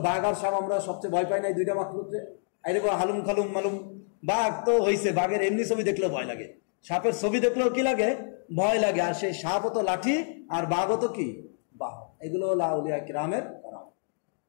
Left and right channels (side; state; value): right; silent; digital silence